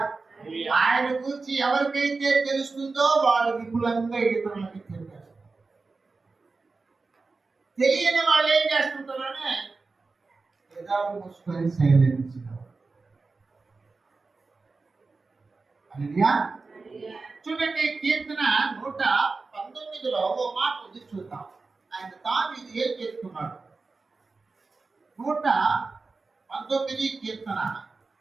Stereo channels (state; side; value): quieter; left; 4.0 dB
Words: ఆయన గురించి ఎవరికైతే తెలుస్తుందో వాళ్ళు విపులంగా ఇతరులకి చెప్పారు. తెలియని వాళ్ళు ఏం చేస్తుంటారనే ఎదాలు మూసుకొని సైలెన్స్. చూడండి, కీర్తన 119లో ఓ మాట ఉంది, చూద్దాం. ఆయన తాను ఇది ఏం చేస్తున్నాడు. 119 19 కీర్తన